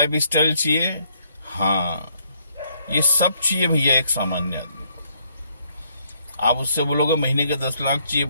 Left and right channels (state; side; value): inverted; both; correlation -0.69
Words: स्टाइल चाहिए? हाँ। ये सब चाहिए भैया एक सामान्य आदमी को। आप उससे बोलोगे महीने के 10 लाख चाहिए,